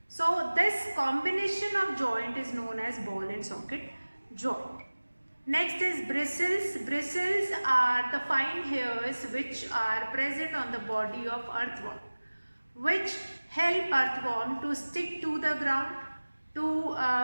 So this combination of joint is known as ball and socket joint. Next is bristles. Bristles are the fine hairs which are present on the body of earthworm, which help earthworm to stick to the ground,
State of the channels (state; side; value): inverted; both; correlation -1.00